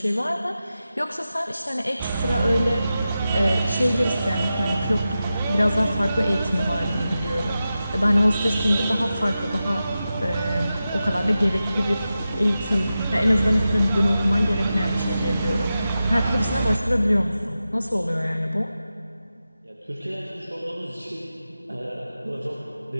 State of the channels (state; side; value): inverted; both; correlation -0.92